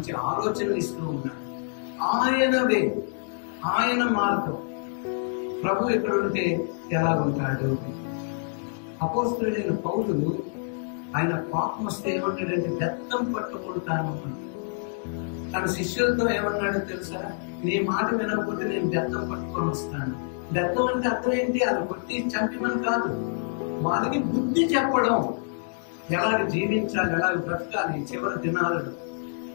ఆలోచనలు ఇస్తూ ఉన్నాడు. ఆయనవే, ఆయన మార్గం. ప్రభు ఎక్కడుంటే ఎలా ఉంటాడు? అపోస్తలుడైన పౌలు ఆయన కోపం వస్తే ఏమన్నాడంటే బెత్తం పట్టుకుంటాను అని. తన శిష్యులతో ఏమన్నాడో తెలుసా? నీ మాట వినకపోతే నేను బెత్తం పట్టుకొని వస్తాను. బెత్తం అంటే అర్థం ఏంటి? అది కొట్టి చంపిమని కాదు, వాళ్ళకి బుద్ధి చెప్పడం, ఎలాగ జీవించాలి, ఎలాగ బ్రతకాలి, చివరి దినాలను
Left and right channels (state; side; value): silent; right; 60 dB below the other